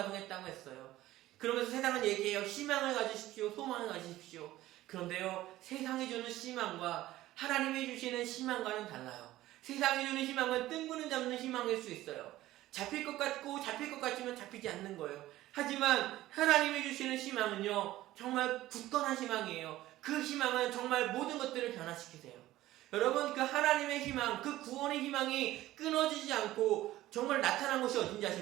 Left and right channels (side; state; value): left; quieter; 15.6 dB